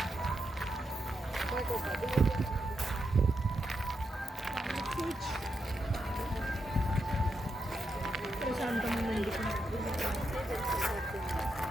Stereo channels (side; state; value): both; normal; correlation 0.84